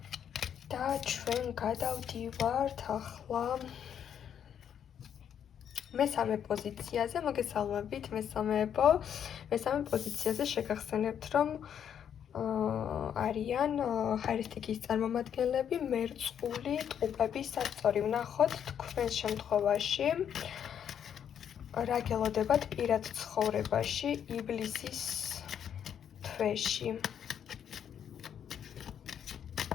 და ჩვენ გადავდივართ ახლა მესამე პოზიციაზე. მოგესალმებით მესამეებო. მესამე პოზიციაზე შეგახსენებთ, რომ არიან ხაერისტიკის წარმომადგენლები, მერწყული, ტყუპები, სასწორი. ვნახოთ თქვენს შემთხვევაში რა გელოდებათ პირად ცხოვრებაში ივლისის თვეში.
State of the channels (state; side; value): quieter; right; 8.8 dB